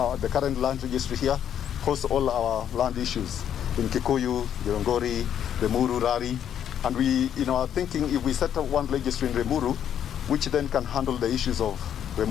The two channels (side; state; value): right; quieter; 9.5 dB